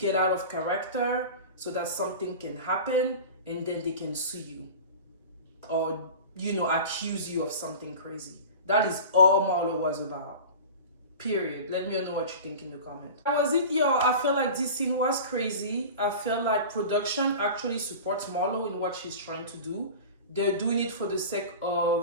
out of character so that something can happen and then they can sue you or, accuse you of something crazy. That is all Marlo was about. Period. Let me know what you think in the comments. That was it, y'all. I feel like this scene was crazy. I feel like production actually supports Marlo in what she's trying to do. They're doing it for the sake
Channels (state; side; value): inverted; both; correlation -0.34